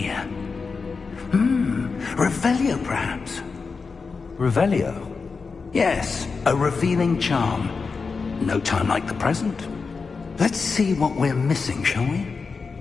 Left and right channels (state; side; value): quieter; right; 4.8 dB